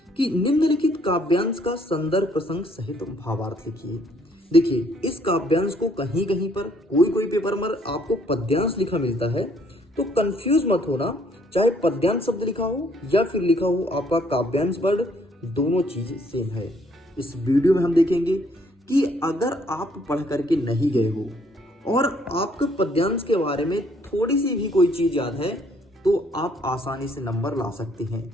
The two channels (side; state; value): both; normal; correlation 0.65